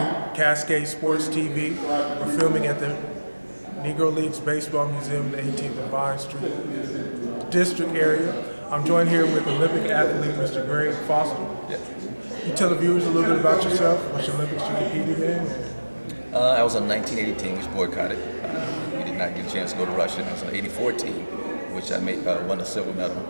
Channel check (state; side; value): inverted; both; correlation -1.00